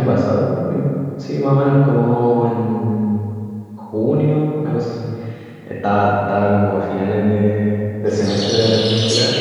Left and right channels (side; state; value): both; identical; correlation 1.00